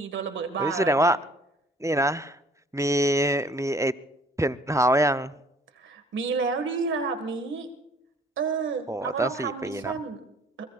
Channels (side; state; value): both; normal; correlation 0.55